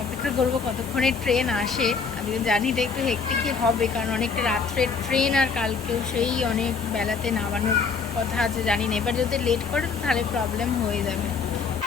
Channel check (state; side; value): quieter; right; 5.3 dB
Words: অপেক্ষা করব কতক্ষণে ট্রেন আসে। আমি জানি এটা একটু হেক্টিকই হবে, কারণ অনেকটা রাত্রের ট্রেন, আর কালকেও সেই অনেক বেলাতে নামানোর কথা আছে, জানি না। এবার যদি লেট করে তো তাহলে প্রবলেম হয়ে যাবে।